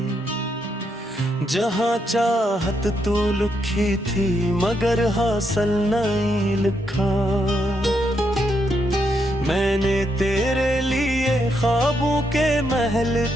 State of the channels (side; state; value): both; normal; correlation 0.79